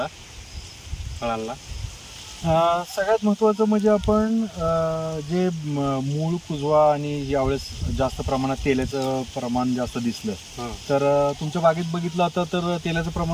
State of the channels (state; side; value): identical; both; correlation 1.00